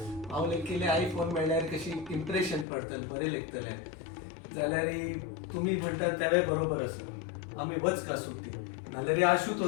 हांव केले आयफोन मेळ्ळ्यार कशी इम्प्रेशन पडतलें बरें लेखतलें जाल्यार तुमी म्हणटात तेवूय बरोबर आसा आमी वचका सुट्टी नाल्यार आशू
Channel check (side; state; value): right; drops out; at 2.7 s